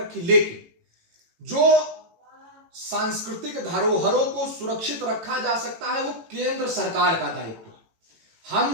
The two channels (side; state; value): left; late; 18 ms